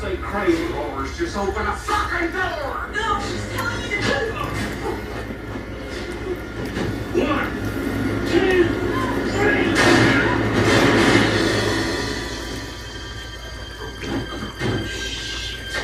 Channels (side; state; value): both; identical; correlation 1.00